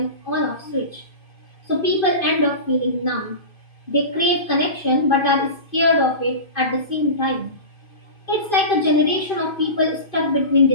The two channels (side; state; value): right; late; 2.5 ms